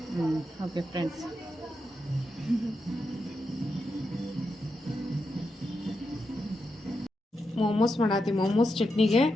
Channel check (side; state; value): both; normal; correlation 0.86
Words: ಓಕೆ ಫ್ರೆಂಡ್ಸ್, ಮೋಮೋಸ್ ಮಾಡತ್ತಿ. ಮೋಮೋಸ್ ಚಟ್ನಿಗೆ